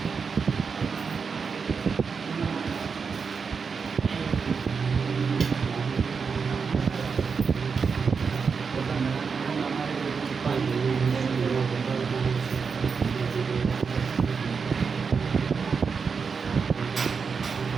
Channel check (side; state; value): left; quieter; 5.5 dB